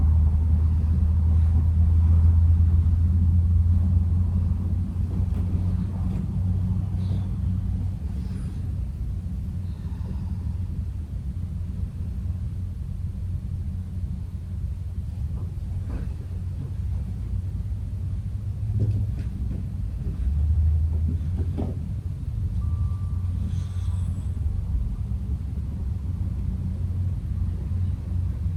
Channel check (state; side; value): identical; both; correlation 1.00